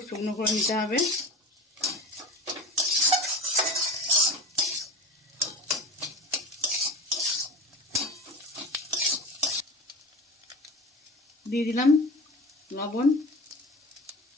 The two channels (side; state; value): both; normal; correlation 0.33